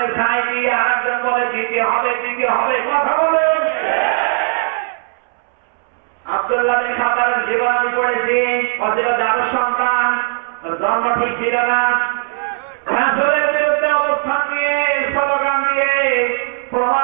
ছাই দিয়ে, আরেকজন বলে দিতে হবে দিতে হবে। কথা বলে আব্দুল্লাহ বিন খাতাবের জীবন আমি পড়েছি, ও ছিল দারুর সন্তান, জন্ম ঠিক ছিল না, রাসূলের বিরুদ্ধে অবস্থান নিয়ে স্লোগান দিয়ে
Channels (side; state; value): left; silent; 68 dB below the other